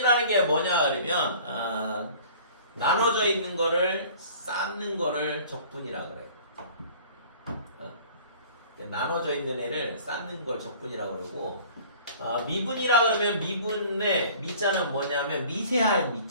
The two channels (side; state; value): both; inverted; correlation -0.48